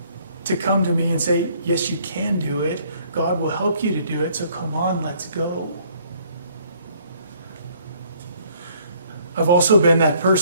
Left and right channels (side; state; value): both; inverted; correlation -0.62